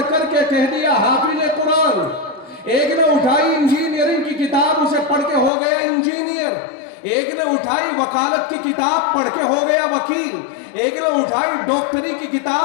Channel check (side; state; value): right; drops out; at 5.5 s